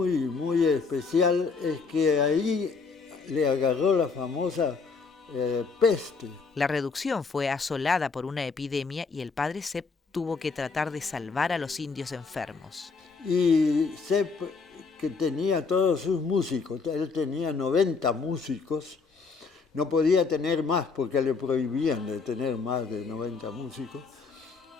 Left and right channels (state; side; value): quieter; right; 4.7 dB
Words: especial es que ahí le agarró la famosa peste. La reducción fue asolada por una epidemia y el padre Sepp tuvo que tratar de salvar a los indios enfermos. Y Sepp, que tenía todos sus músicos, él tenía 90 músicos, no podía tener más porque le prohibían de tener más de 90 músicos,